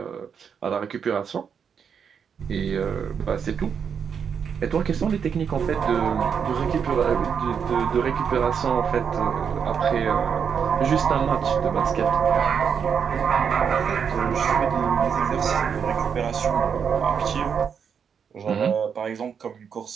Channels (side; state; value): left; quieter; 7.0 dB